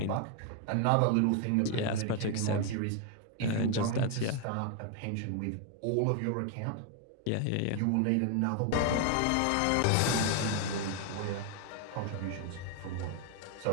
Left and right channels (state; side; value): different; both; correlation 0.01